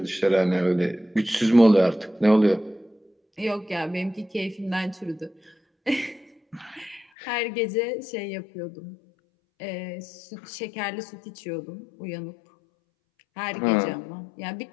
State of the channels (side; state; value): right; drops out; at 7.1 s